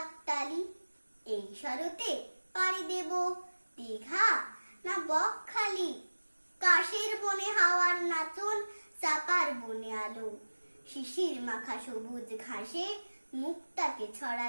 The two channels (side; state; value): both; inverted; correlation -1.00